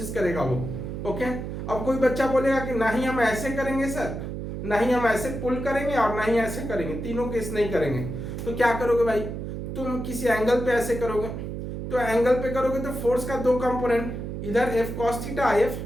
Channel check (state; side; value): noise; right; hum, 6 dB below the sound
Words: करेगा वो। ओके, अब कोई बच्चा बोलेगा कि नहीं हम ऐसे करेंगे सर, नहीं हम ऐसे पुल करेंगे और नहीं ऐसे करेंगे, तीनों केस नहीं करेंगे, तो क्या करोगे भाई, तुम किसी एंगल पे ऐसे करोगे, तो एंगल पे करोगे तो फोर्स का दो कंपोनेंट, इधर F cos theta, F